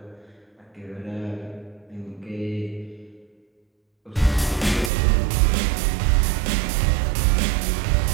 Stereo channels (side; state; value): left; drops out; at 4.9 s